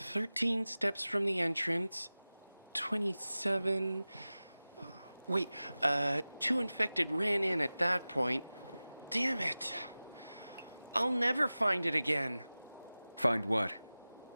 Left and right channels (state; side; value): inverted; both; correlation -0.97